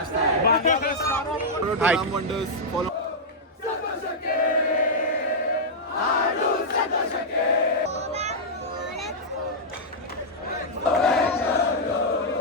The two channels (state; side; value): normal; both; correlation -0.07